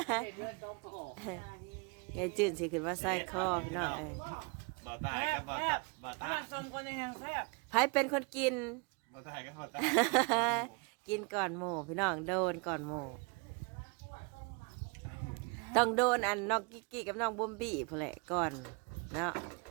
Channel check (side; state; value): left; quieter; 32.6 dB